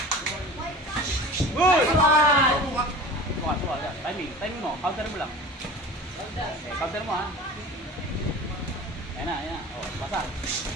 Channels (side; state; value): both; normal; correlation 0.37